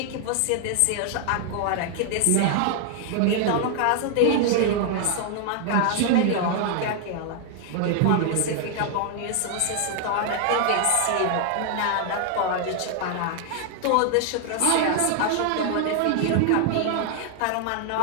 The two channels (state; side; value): different; both; correlation 0.00